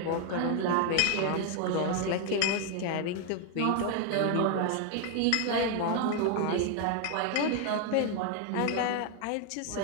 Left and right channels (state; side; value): different; both; correlation 0.01